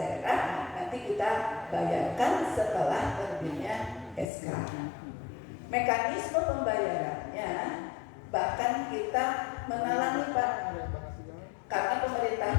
nanti kita bayarkan setelah terbitnya SK. Mekanisme pembayarannya bahkan kita menalangi Pak, karena pemerintah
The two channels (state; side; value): drops out; right; at 4.2 s